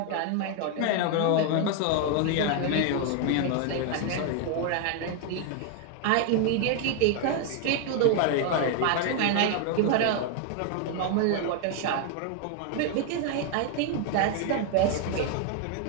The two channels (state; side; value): different; both; correlation 0.00